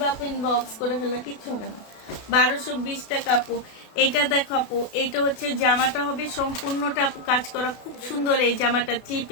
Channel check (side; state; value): right; late; 32 ms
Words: প্রিন্ট বক্স করে ফেলবা, কিচ্ছু হবে না। 1220 টাকা আপু। এটা দেখো আপু, এটা হচ্ছে জামাটা হবে সম্পূর্ণটা আপু কাজ করা, খুব সুন্দর এই জামাটা। 3